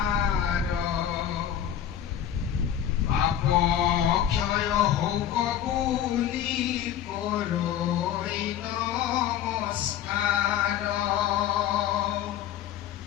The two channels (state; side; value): quieter; right; 10.2 dB